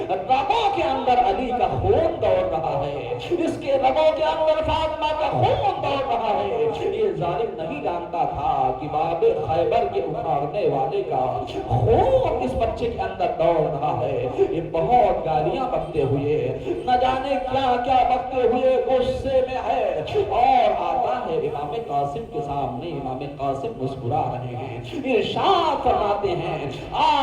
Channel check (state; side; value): identical; both; correlation 1.00